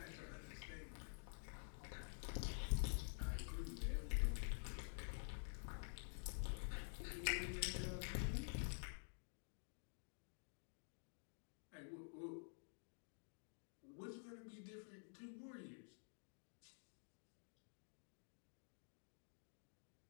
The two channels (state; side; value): silent; right; digital silence